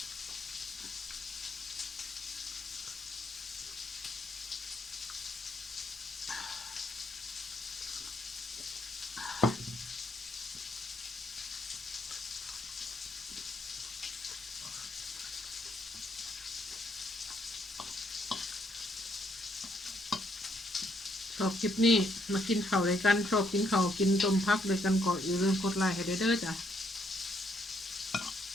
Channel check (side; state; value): both; normal; correlation 0.72